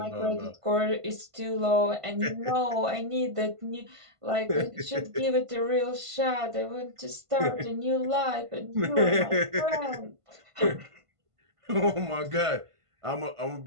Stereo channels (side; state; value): left; late; 1.5 ms